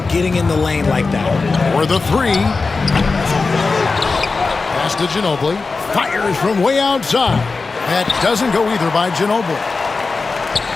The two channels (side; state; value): right; quieter; 4.1 dB